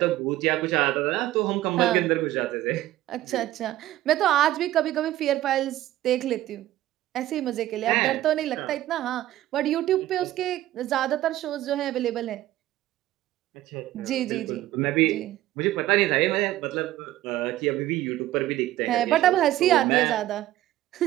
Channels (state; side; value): quieter; left; 14.7 dB